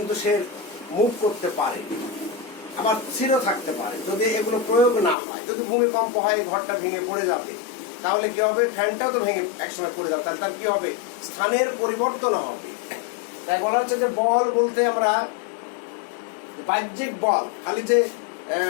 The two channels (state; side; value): drops out; right; at 5.2 s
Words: সে মুভ করতে পারে, আবার স্থির থাকতে পারে। যদি এগুলো প্রয়োগ না হয়, যদি ভূমিকম্প হয় ঘরটা ভেঙে পড়ে যাবে, তাহলে কি হবে, ফ্যানটাও তো ভেঙে একসময় পড়ে যাবে, তাহলে তার কি হবে, স্থানের পরিবর্তন হবে। তাই বলা হচ্ছে যে বল বলতে আমরা বাহ্যিক বল, খালি যে